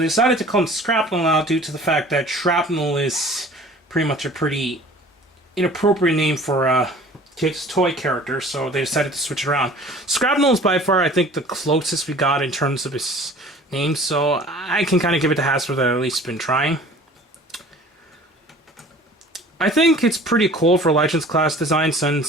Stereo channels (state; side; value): normal; both; correlation 0.47